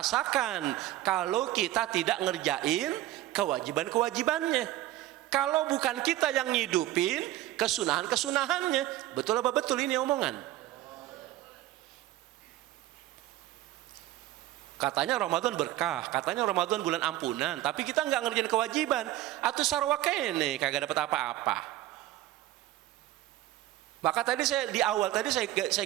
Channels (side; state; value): left; quieter; 14.9 dB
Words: kalau kita tidak ngerjain kewajiban-kewajibannya. Kalau bukan kita yang ngidupin kesunahan-kesunahannya. Betul apa betul ini omongan? Katanya Ramadan berkah, katanya Ramadan bulan ampunan, tapi kita nggak ngerjain kewajiban. Atau sarwa kene kagak dapat apa-apa. Maka tadi saya di awal tadi saya